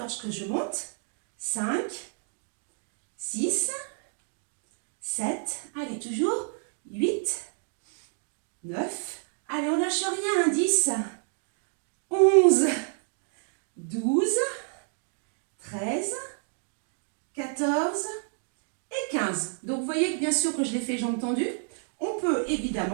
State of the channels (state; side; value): silent; left; 58 dB below the other